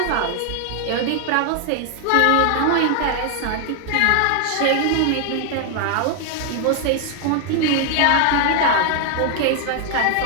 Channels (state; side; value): different; both; correlation 0.00